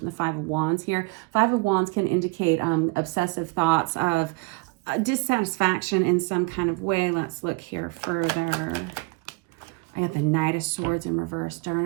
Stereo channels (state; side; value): quieter; left; 27.3 dB